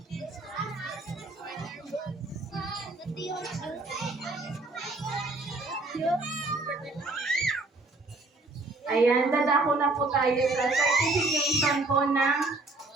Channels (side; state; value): left; quieter; 3.2 dB